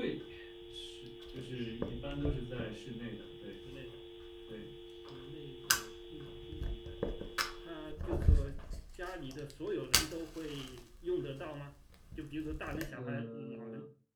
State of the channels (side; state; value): both; identical; correlation 1.00